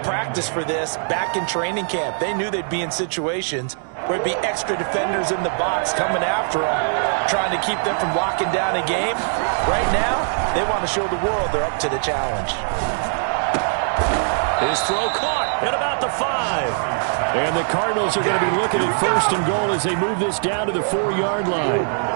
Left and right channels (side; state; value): left; silent; digital silence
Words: practiced for this back in training camp. They knew they'd be in situations where it'd be extra defenders in the box coming after them, trying to keep them from locking down a game. Right now, they want to show the world they're up to the challenge. His throw caught at about the 5. And the Cardinals are going to be looking at first and goal as they move this down to the 4-yard line.